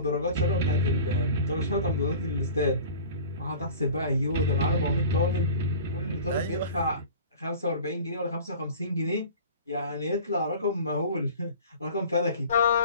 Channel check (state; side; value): inverted; both; correlation -0.41